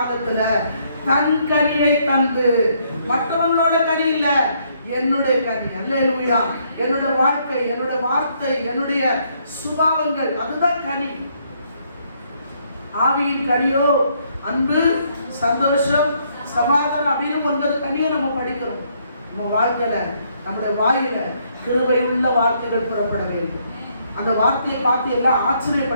தன் கனியை தந்து, மற்றவங்களோட கனி இல்ல, என்னுடைய கனி. அல்லேலூயா. என்னுடைய வாழ்க்கை, என்னுடைய வார்த்தை, என்னுடைய சுபாவங்கள், அதுதான் கனி. ஆவியின் கனியோ அன்பு, சந்தோஷம், சமாதானம் அப்படின்னு 9 கனியை நம்ம படிக்கிறோம். நம்ம வாழ்க்கையில, நம்முடைய வாயில கிருபை உள்ள வார்த்தைகள் புறப்பட வேண்டும். அந்த வார்த்தையை பார்த்து எல்லாம்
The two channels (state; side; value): inverted; both; correlation -0.70